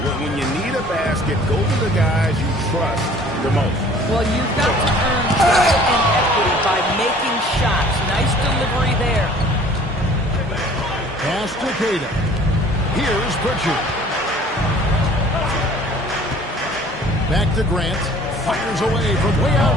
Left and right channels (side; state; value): both; normal; correlation 0.51